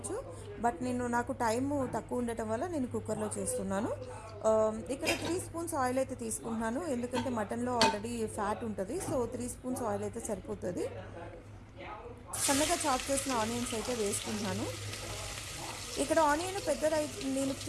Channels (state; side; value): identical; both; correlation 1.00